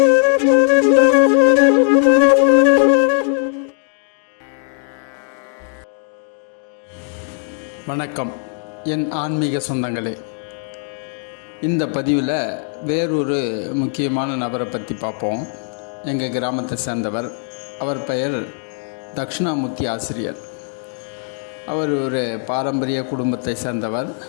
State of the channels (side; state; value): right; silent; 61 dB below the other